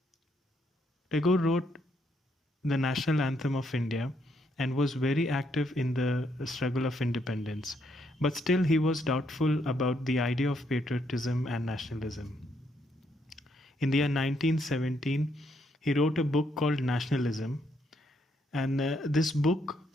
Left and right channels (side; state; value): both; normal; correlation 0.74